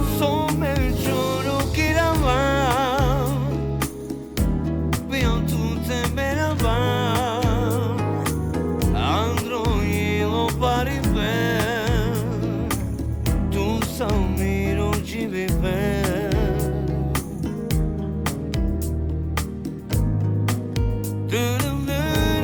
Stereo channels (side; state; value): both; identical; correlation 1.00